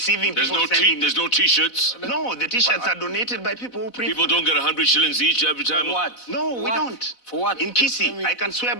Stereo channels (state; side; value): late; right; 4.0 ms